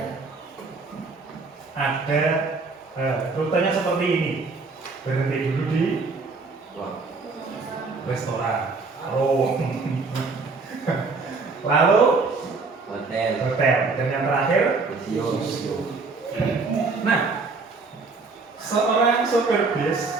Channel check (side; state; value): left; quieter; 4.1 dB